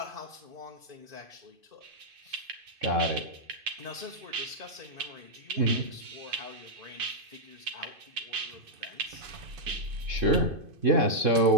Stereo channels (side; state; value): left; late; 2.5 ms